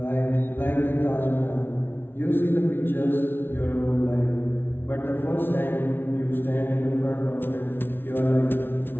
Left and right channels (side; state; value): right; late; 0.11 ms